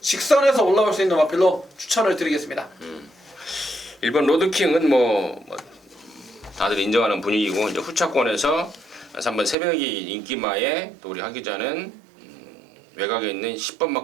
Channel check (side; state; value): left; drops out; at 9.6 s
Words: 올라올 수 있는 마필로 추천을 드리겠습니다. 1번 로드킹은 뭐 다들 인정하는 분위기고 이제 후차권에서 3번 새벽이 인기마에 또 우리 하 기자는 외곽에 있는